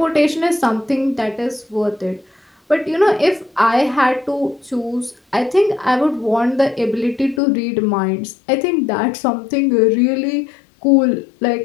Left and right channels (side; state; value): right; drops out; at 7.4 s